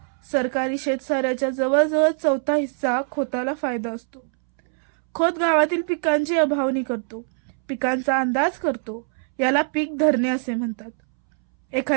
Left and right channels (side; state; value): left; silent; 63 dB below the other